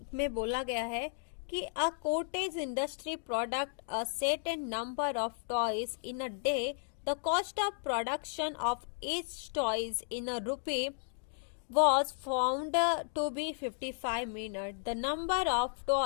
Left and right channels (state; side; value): silent; right; digital silence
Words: में बोला गया है कि a cottage industry product a set and number of toys in a day, the cost of production of each toys in a rupee was found to be 55 minutes. The number of